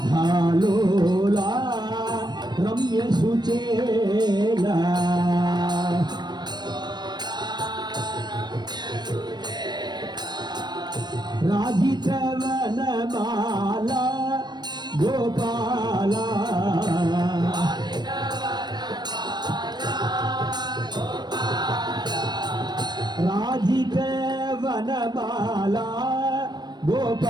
రాధాలోలా రమ్య సుచేలా రాజిత వనమాల గోపాల రాజిత వనమాల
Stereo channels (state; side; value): late; left; 0.21 ms